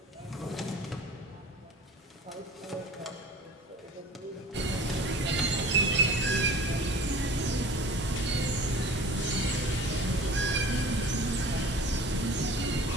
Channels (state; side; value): normal; both; correlation 0.43